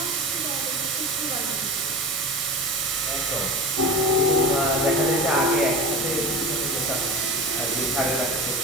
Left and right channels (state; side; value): normal; both; correlation 0.31